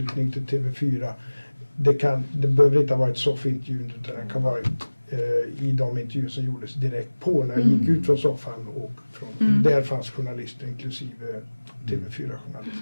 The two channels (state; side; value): inverted; both; correlation -1.00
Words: till TV4. Det behöver inte ha varit soffintervjun utan det kan vara i de intervjuer som gjordes direkt på när jag gick ut från soffan och där fanns journalister inklusive TV4-journalister.